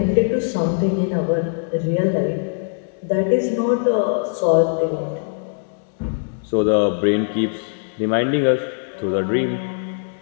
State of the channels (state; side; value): silent; right; digital silence